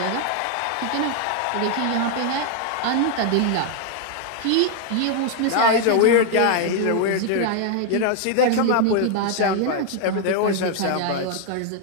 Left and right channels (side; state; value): both; different; correlation 0.00